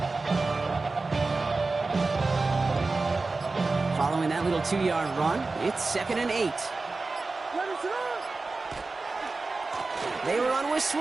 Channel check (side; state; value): left; quieter; 3.7 dB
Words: Following that little 2-yard run, it's 2nd and 8. They run with